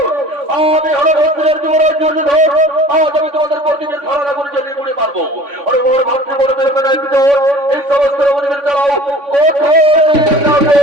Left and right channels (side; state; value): left; late; 3.5 ms